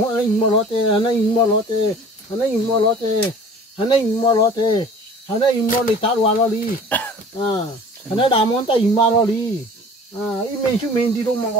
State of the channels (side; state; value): both; normal; correlation 0.45